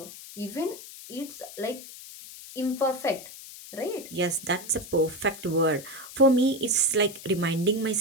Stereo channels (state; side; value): noise; left; hiss, 15 dB below the sound